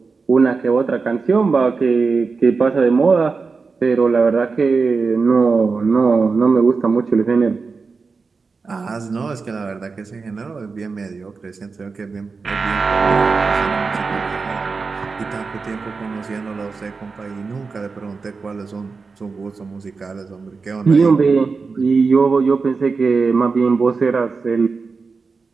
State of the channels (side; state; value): left; quieter; 4.6 dB